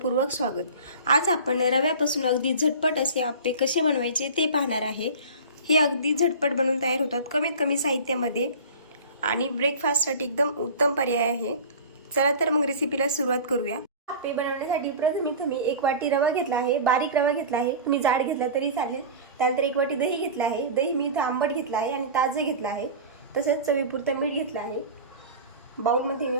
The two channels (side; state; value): both; inverted; correlation -0.35